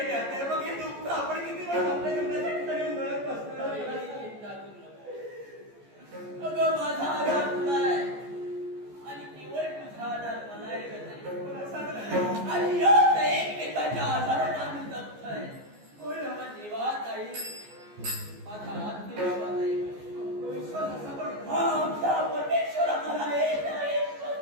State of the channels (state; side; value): late; left; 14 ms